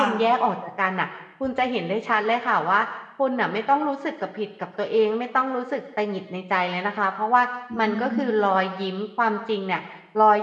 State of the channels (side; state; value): both; identical; correlation 1.00